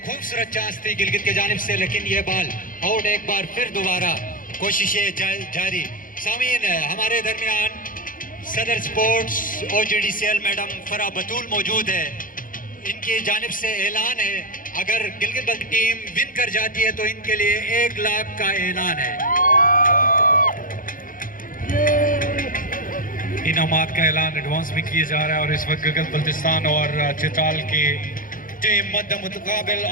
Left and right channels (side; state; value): right; late; 0.40 ms